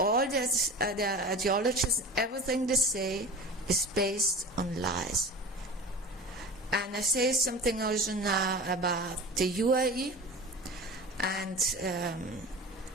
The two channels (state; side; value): normal; both; correlation 0.35